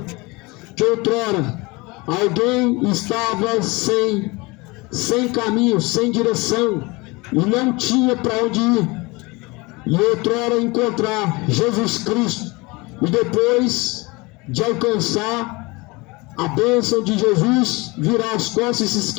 que outrora alguém estava sem caminho, sem direção e não tinha para onde ir, e outrora encontrar Jesus Cristo, e depois de alcançar a bênção de Jesus, virar as costas e se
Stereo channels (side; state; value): right; quieter; 24.7 dB